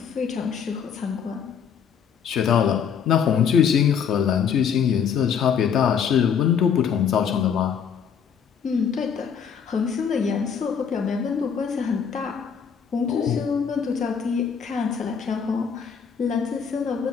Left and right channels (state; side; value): quieter; right; 7.2 dB